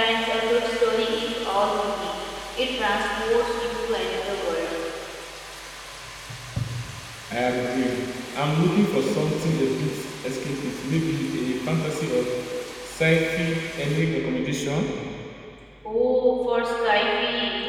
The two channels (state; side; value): identical; both; correlation 1.00